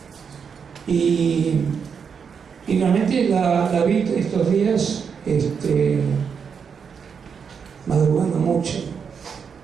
Y realmente la vi estos días madrugando mucho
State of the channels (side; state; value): left; quieter; 6.5 dB